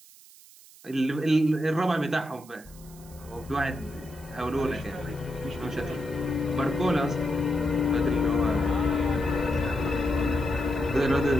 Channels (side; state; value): right; noise; hiss, 22 dB below the sound